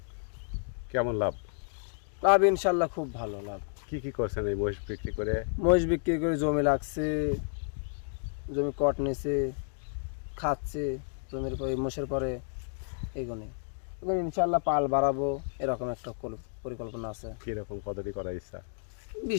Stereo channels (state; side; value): silent; right; 57 dB below the other